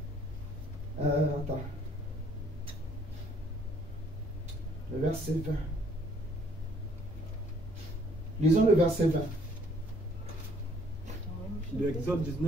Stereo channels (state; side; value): normal; both; correlation 0.63